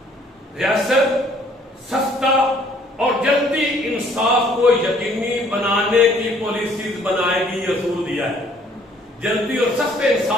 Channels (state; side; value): normal; both; correlation 0.60